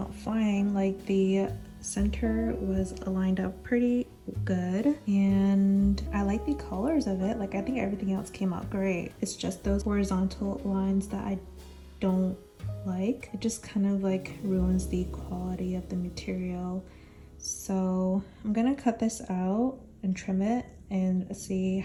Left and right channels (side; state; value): both; identical; correlation 1.00